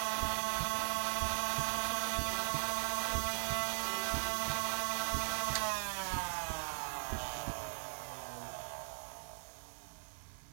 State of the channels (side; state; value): left; silent; 52 dB below the other